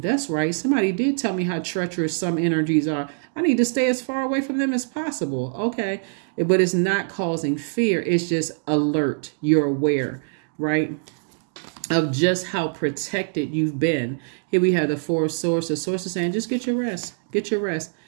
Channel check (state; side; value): silent; left; digital silence